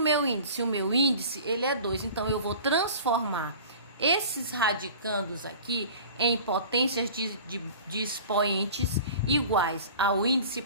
índice? O meu índice, ele é 2. Então, eu vou transformar esses radicandos aqui em potências de expoentes iguais ao índice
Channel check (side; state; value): both; inverted; correlation -0.41